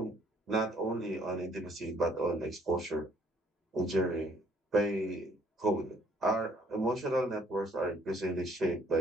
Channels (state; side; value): normal; both; correlation 0.62